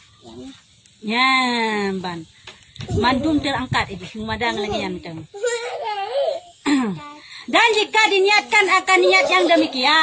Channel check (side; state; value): both; identical; correlation 1.00